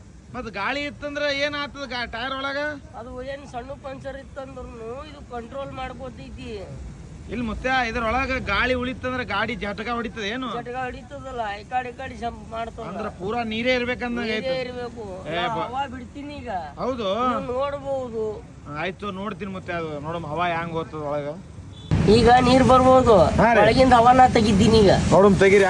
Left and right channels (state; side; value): identical; both; correlation 1.00